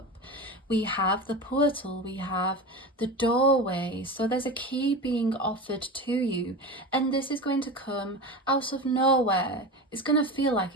We have the portal, we have the doorway. So there's a key being offered to you. And this is going to come out of nowhere. It's going to feel like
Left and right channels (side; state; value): both; normal; correlation 0.27